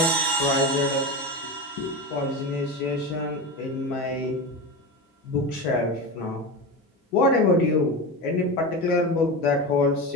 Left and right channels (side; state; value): both; normal; correlation 0.22